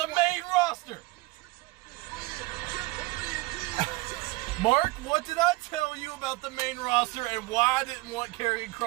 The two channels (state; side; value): quieter; left; 21.5 dB